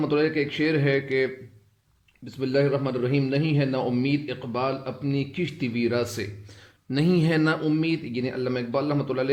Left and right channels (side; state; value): both; identical; correlation 1.00